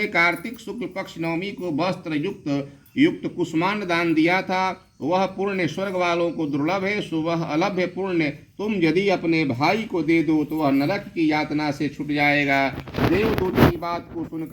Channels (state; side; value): identical; both; correlation 1.00